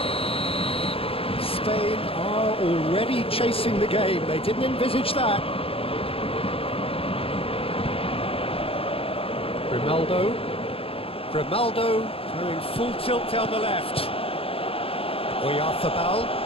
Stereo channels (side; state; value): right; late; 0.27 ms